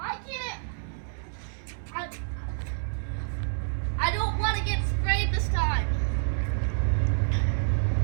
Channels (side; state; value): left; silent; 57 dB below the other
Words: can't it? I don't want to get sprayed this time.